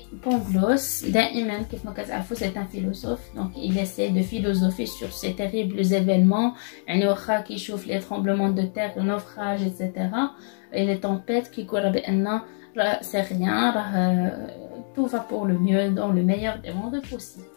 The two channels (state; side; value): silent; right; 62 dB below the other